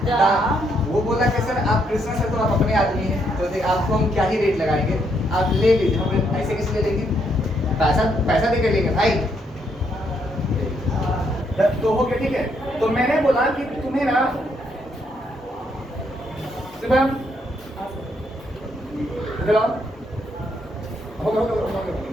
दाम वो बोला कि सर आप कृष्णा सर तो आप अपने आदमी हैं तो आपको हम क्या ही रेट लगाएंगे आप ले लीजिए हम ऐसे कैसे ले लेंगे पैसा दे के लेंगे भाई तो हो गया ठीक है। तो मैंने बोला कि तुम्हें ना शुभम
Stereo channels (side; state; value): both; normal; correlation 0.74